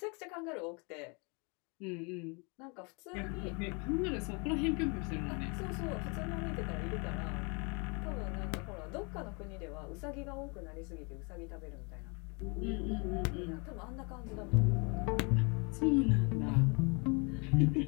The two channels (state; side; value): quieter; right; 32.3 dB